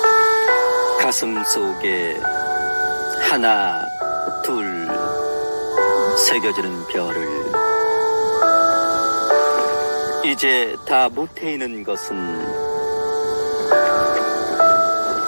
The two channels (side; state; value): both; inverted; correlation -1.00